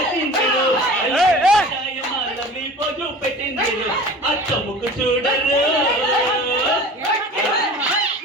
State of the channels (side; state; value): both; normal; correlation 0.40